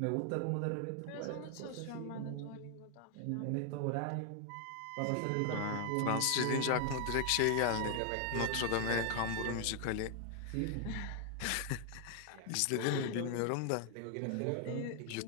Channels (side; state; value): both; different; correlation 0.00